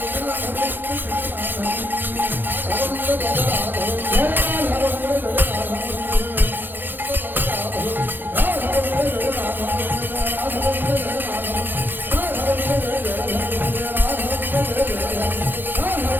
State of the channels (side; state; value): left; late; 0.093 ms